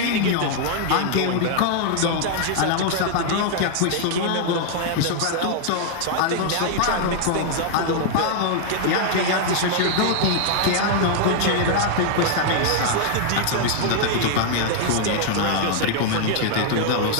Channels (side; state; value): both; different; correlation 0.00